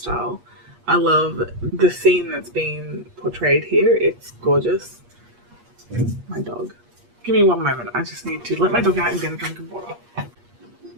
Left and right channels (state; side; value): late; left; 8.4 ms